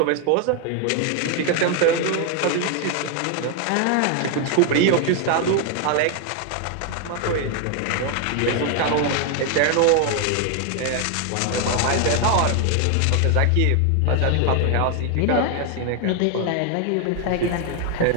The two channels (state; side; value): different; both; correlation 0.01